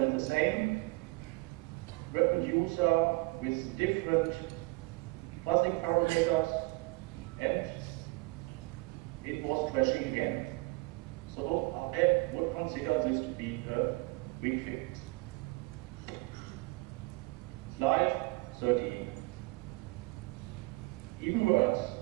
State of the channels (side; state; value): left; quieter; 25.1 dB